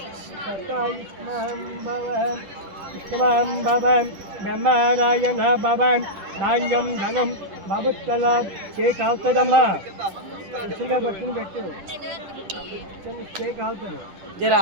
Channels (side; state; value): left; late; 10 ms